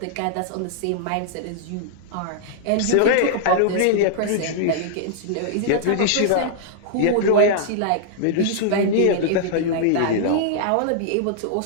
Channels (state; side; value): different; both; correlation -0.01